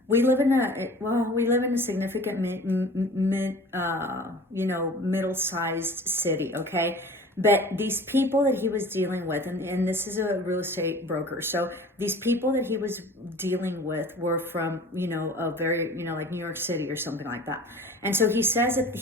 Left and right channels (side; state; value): both; normal; correlation 0.42